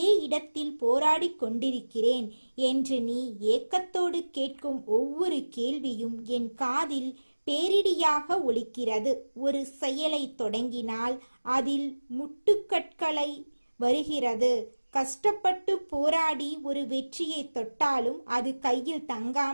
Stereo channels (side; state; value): both; inverted; correlation -1.00